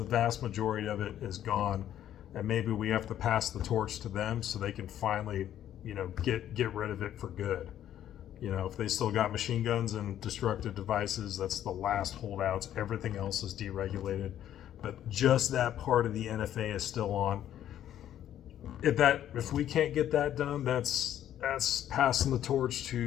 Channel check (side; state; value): right; quieter; 11.2 dB